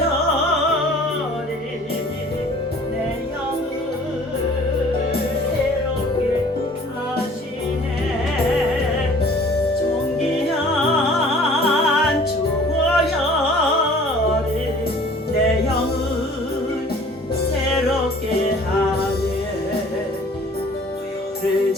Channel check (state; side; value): normal; both; correlation 0.50